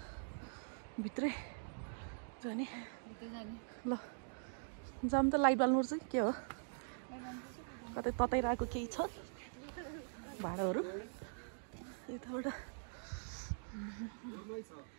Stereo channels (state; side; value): silent; left; digital silence